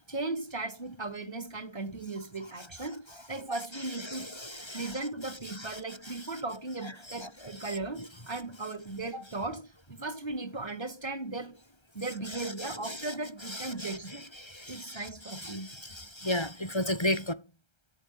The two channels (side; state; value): right; late; 1.3 ms